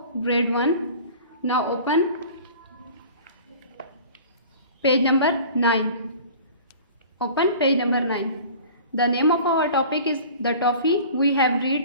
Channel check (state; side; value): inverted; both; correlation -0.43